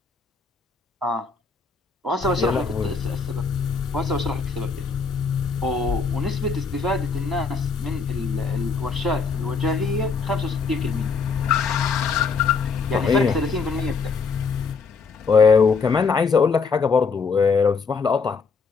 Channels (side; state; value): right; quieter; 4.9 dB